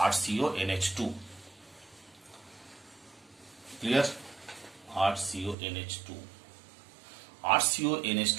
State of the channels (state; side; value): drops out; left; at 5.6 s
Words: RCONH2, clear? RCONH2